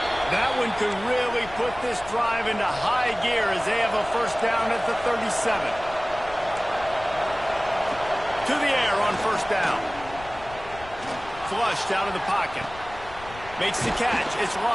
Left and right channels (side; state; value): left; noise; rumble, 17 dB below the sound